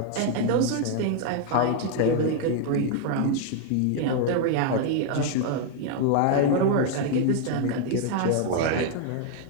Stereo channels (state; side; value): different; both; correlation 0.00